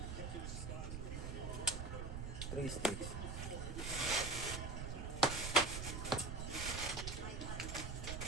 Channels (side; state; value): right; noise; rumble, 4 dB below the sound